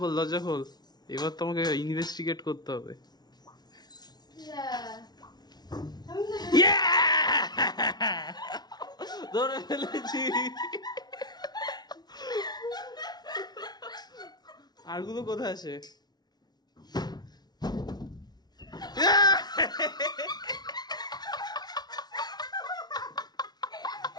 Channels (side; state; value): right; late; 0.19 ms